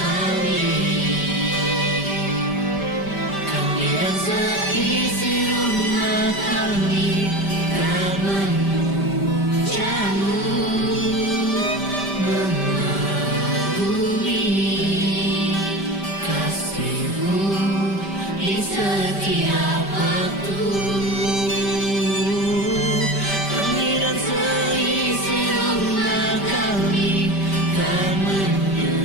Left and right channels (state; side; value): late; right; 5.1 ms